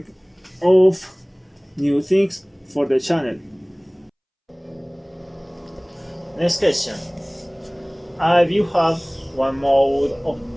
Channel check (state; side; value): identical; both; correlation 1.00